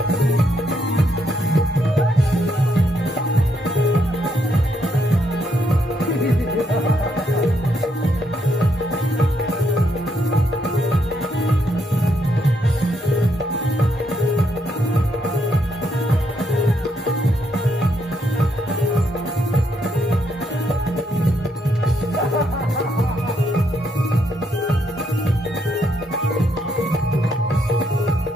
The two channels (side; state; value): both; normal; correlation 0.76